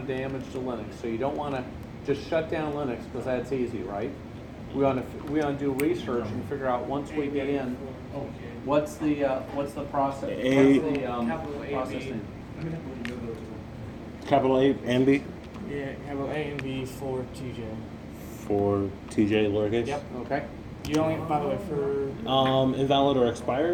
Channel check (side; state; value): both; identical; correlation 1.00